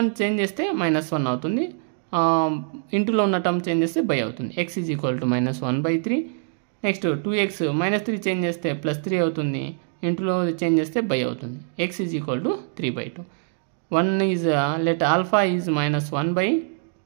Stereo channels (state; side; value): silent; left; digital silence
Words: change చేస్తే -1 అవుతుంది. ఇంటులో ఉన్న టర్మ్ చేంజ్ చేస్తే బై అవుతుంది. x is equal to -1/3. Next 2x -3 change చేస్తే +3 అవుతుంది. ఇంటులో చేంజ్ చేస్తే బై అవుతుంది. x is equal to 3/2. 1 is let alpha is